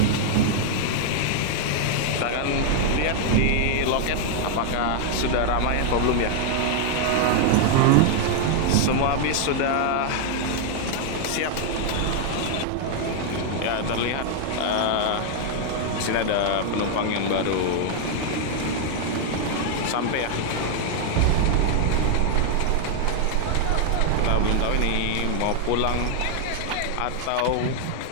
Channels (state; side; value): different; both; correlation 0.00